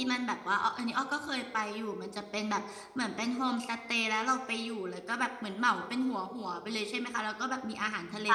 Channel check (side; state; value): both; identical; correlation 1.00